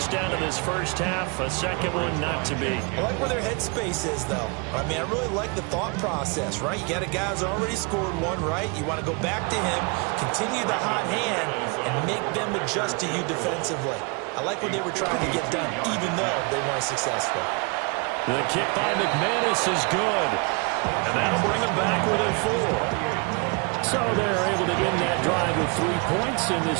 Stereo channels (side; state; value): left; quieter; 32.5 dB